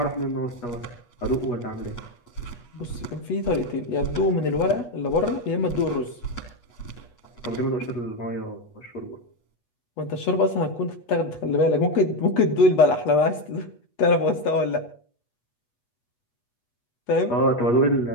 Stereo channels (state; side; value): late; right; 8.3 ms